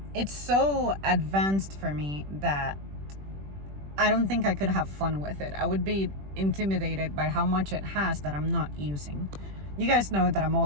it's so advanced for me that I don't think I could have fun with it. I would be intimidated by how much it has that I'm not using. You guys know that I'm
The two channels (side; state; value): left; late; 21 ms